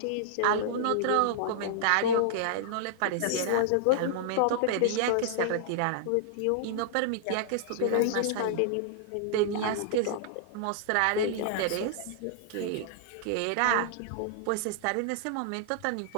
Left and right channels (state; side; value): different; both; correlation -0.01